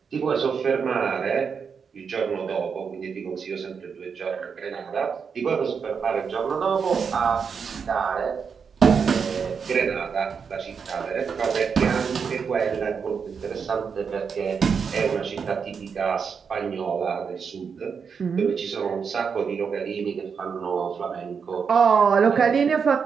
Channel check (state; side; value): quieter; left; 6.2 dB